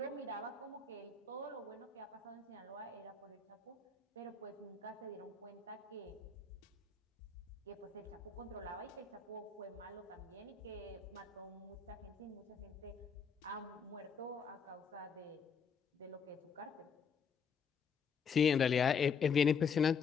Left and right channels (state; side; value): quieter; right; 5.9 dB